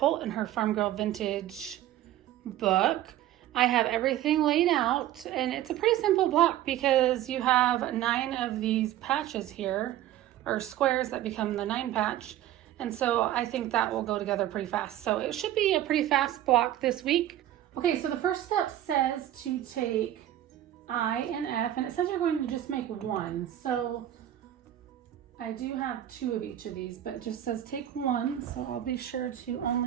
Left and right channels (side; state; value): left; quieter; 12.6 dB